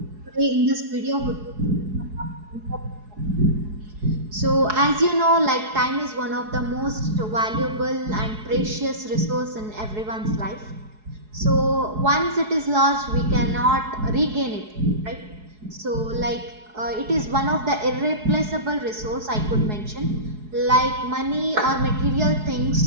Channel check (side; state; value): left; late; 4.7 ms